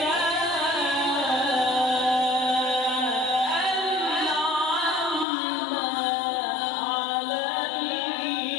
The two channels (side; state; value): right; drops out; at 5.2 s